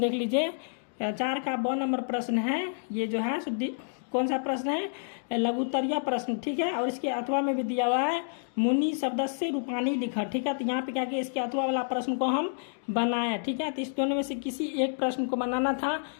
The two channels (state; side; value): silent; right; digital silence